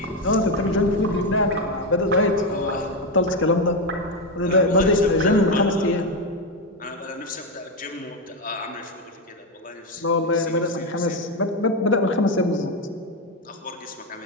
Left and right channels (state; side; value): normal; both; correlation 0.09